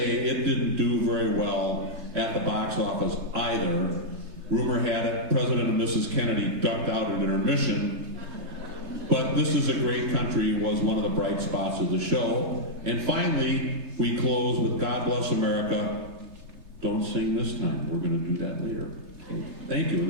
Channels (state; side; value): late; left; 3.3 ms